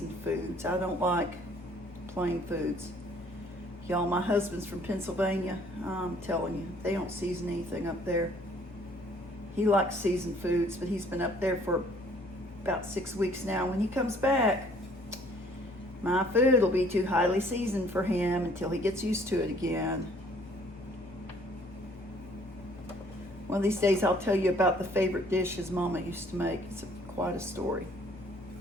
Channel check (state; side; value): normal; both; correlation 0.59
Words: foods. I don't like plain foods. Y'all, my husband's from Pennsylvania. I'm telling you, they don't season anything up there. He likes seasoned foods, but he's been up there for about 6 weeks now. When he comes back, my food will be too highly seasoned for him until he gets used to it again. One of these days I'll tell you about the favorite dish his mama used to make. It's quite a story.